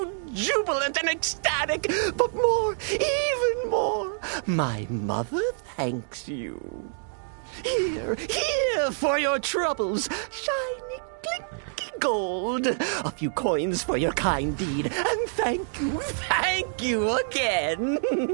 jubilant and ecstatic, but more, even more, my mother thanks you. Here for your troubles, shiny, clinky gold, a few coins for your kind deed, and thank you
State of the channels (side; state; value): left; silent; digital silence